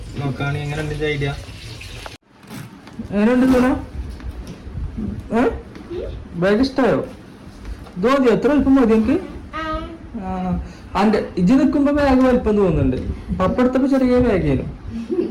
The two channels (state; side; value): identical; both; correlation 1.00